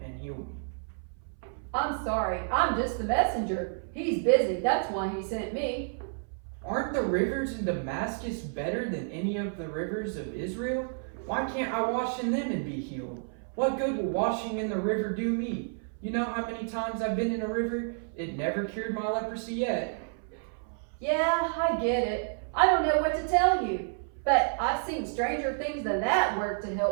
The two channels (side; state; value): left; silent; 58 dB below the other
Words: heal me. "I'm sorry, I'm just the messenger. He's busy, that's why he sent me." Aren't the rivers in Damascus better than any of the rivers of Israel? Why can't I wash in them and be healed? What good will washing in the river do me? You know how many times I've been in a river? It never cured my leprosy yet. "Yeah, I get it. I don't know what to tell you. But I've seen stranger things than that work to